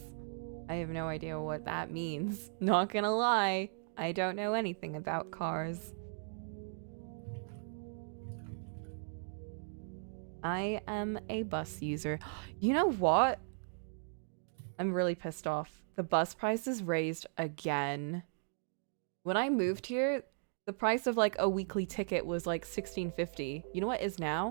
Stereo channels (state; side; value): silent; left; digital silence